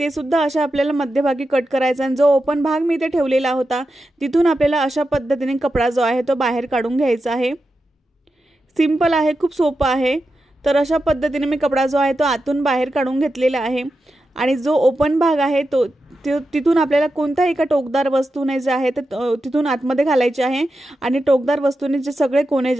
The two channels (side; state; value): both; normal; correlation 0.90